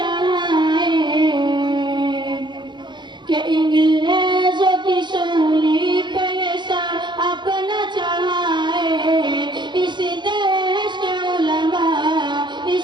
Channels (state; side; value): late; left; 0.22 ms